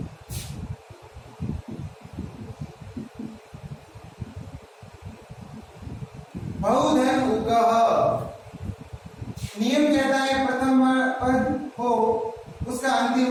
बहुधन उगह, नियम कहता है प्रथम पद हो उसका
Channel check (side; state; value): both; identical; correlation 1.00